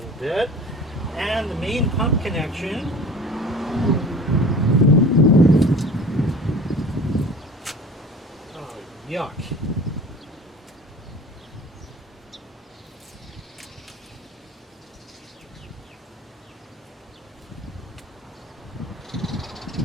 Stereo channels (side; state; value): both; normal; correlation 0.41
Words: bit. And the main pump connection. Oh, yuck.